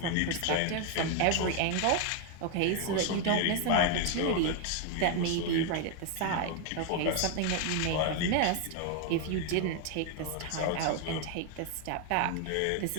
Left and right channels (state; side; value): different; both; correlation 0.01